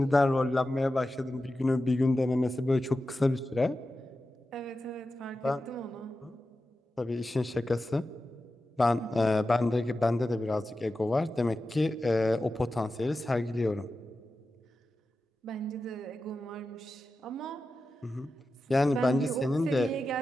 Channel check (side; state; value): both; normal; correlation 0.92